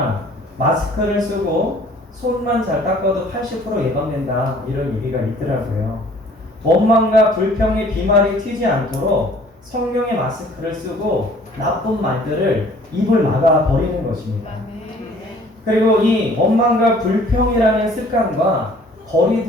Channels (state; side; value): normal; both; correlation 0.54